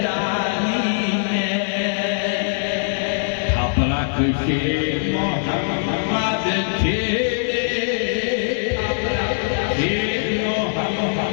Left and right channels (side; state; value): right; silent; digital silence